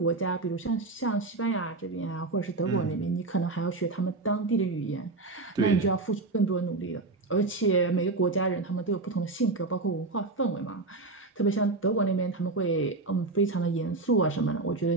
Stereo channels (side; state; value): left; quieter; 3.4 dB